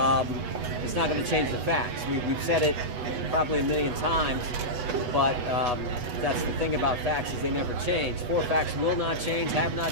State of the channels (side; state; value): left; late; 8.1 ms